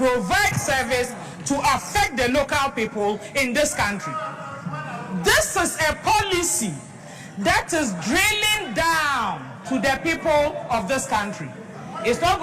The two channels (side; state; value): both; identical; correlation 1.00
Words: service to affect the local people in this country? This is a policy that is drilling down to the people of this country. It's not